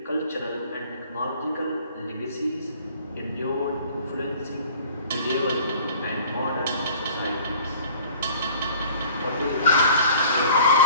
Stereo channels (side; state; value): both; inverted; correlation -0.49